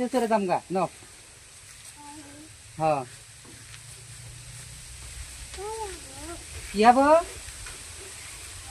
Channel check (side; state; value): both; identical; correlation 1.00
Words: চড়ে দাম গা ন। হ্যাঁ, কি হবো?